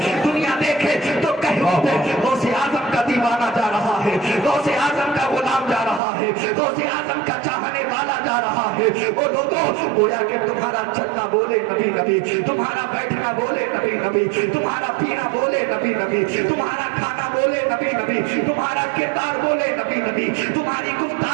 دنیا دیکھے تو کہہ اٹھے غوث اعظم کا دیوانہ جا رہا ہے، غوث اعظم کا غلام جا رہا ہے، غوث اعظم کا چاہنے والا جا رہا ہے۔ وہ لوگوں، گویا کہ تمہارا چلنا بولے نبی نبی، تمہارا بیٹھنا بولے نبی نبی، تمہارا پینا بولے نبی نبی، تمہارا کھانا بولے نبی نبی، تمہارا کردار بولے نبی نبی، تمہاری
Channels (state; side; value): drops out; left; at 6.0 s